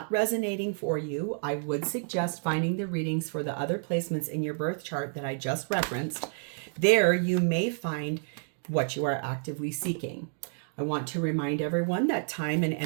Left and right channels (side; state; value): left; silent; digital silence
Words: resonating for you, I would suggest finding the readings for the other placements in your birth chart that I just referenced. There you may find what you are actively seeking. I want to remind everyone that time and